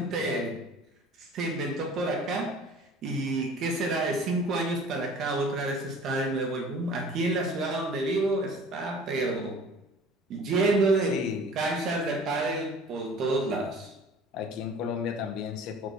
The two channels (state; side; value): normal; both; correlation 0.46